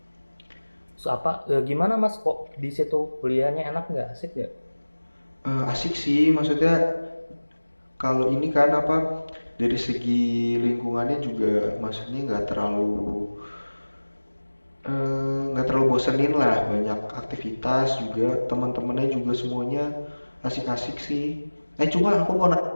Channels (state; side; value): inverted; both; correlation -1.00